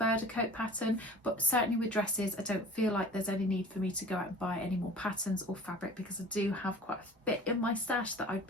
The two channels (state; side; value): normal; both; correlation 0.43